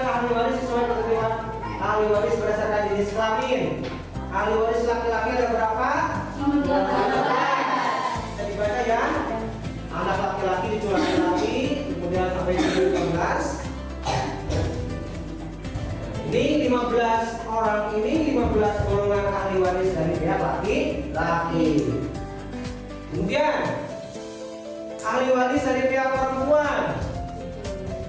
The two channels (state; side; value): identical; both; correlation 1.00